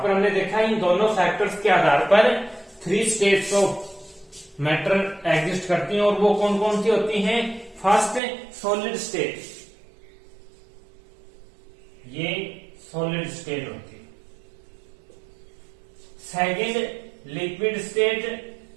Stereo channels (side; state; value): left; drops out; at 8.2 s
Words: पर हमने देखा इन दोनों फैक्टर्स के आधार पर 3 स्टेट्स ऑफ मैटर एग्जिस्ट करती हैं, और वो कौन कौन सी होती हैं? फर्स्ट सॉलिड स्टेट, ये सॉलिड स्टेट होती है। सेकंड लिक्विड स्टेट,